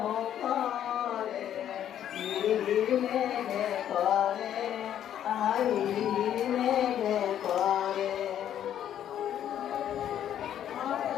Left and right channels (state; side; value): quieter; right; 10.4 dB